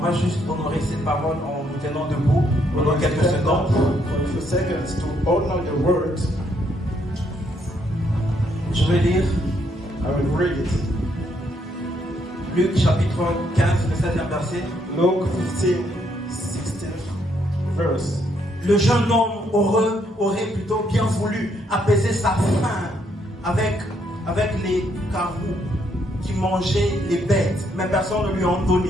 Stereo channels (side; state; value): both; normal; correlation 0.73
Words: juste honorer cette parole en nous tenant debout pendant quelques secondes. For a few seconds to honor the word. Je vais lire I will read it. Luc chapitre 15, le 16e verset. Luke 15, 16th verse. Le jeune homme aurait plutôt bien voulu apaiser sa faim avec les carreaux qui mangeaient les bêtes, mais personne ne lui en